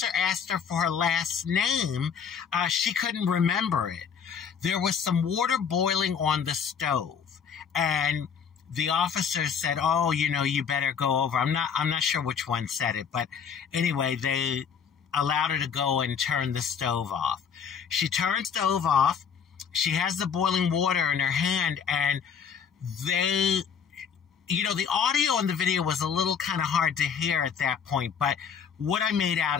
asked her for her last name, she couldn't remember it. There was some water boiling on the stove, and the officer said, "Oh, you better go over." I'm not sure which one said it, but anyway, they allowed her to go and turn the stove off. She turned the stove off. She has the boiling water in her hand, and the audio in the video was a little kind of hard to hear at that point, but what I made out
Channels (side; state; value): right; quieter; 7.1 dB